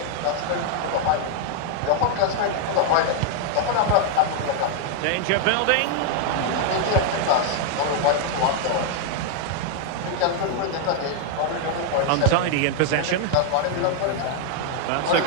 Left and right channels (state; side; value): different; both; correlation 0.00